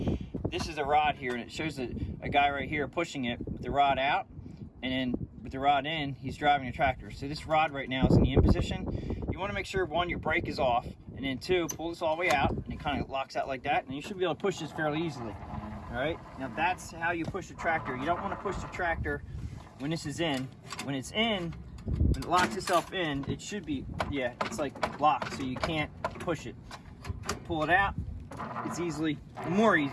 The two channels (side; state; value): both; identical; correlation 1.00